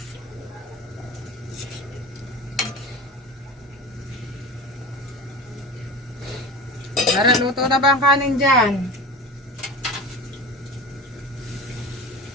Tara, luto na ba ang kanin dyan?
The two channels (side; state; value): both; normal; correlation 0.31